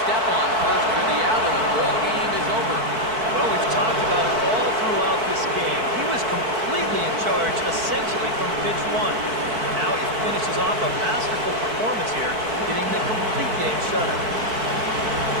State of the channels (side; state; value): left; late; 4.6 ms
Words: step on first for the out, and the ball game is over. Well, we've talked about it all throughout this game. He was completely in charge, essentially, from pitch 1. And now he finishes off a masterful performance here, getting the complete game shutout.